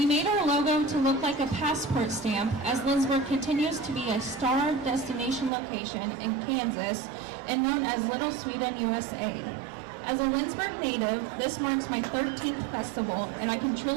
made our logo to look like a passport stamp, as Lindsborg continues to be a star destination location in Kansas and known as Little Sweden, USA. As a Lindsborg native, this marks my 13th festival, and I can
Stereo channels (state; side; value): drops out; left; at 5.5 s